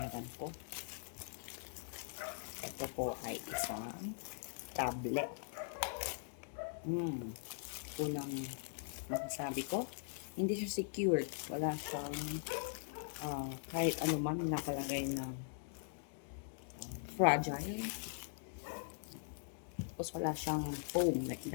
ko. Ito po ay isang tablet. Unang masasabi ko, hindi siya secured. Wala siyang kahit ano man nakalagay na fragile. Tapos wala siyang foam like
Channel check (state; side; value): silent; right; digital silence